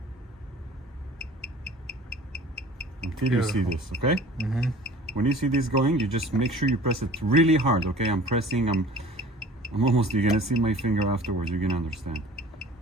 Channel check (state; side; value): normal; both; correlation 0.46